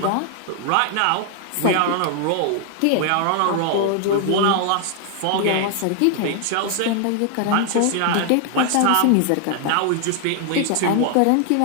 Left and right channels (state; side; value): different; both; correlation 0.00